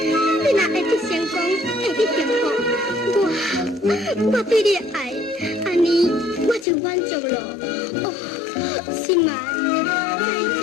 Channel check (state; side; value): drops out; right; at 6.7 s